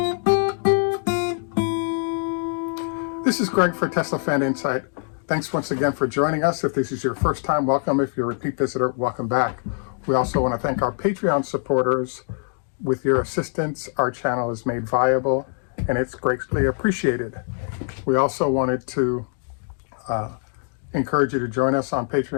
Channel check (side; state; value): right; silent; 57 dB below the other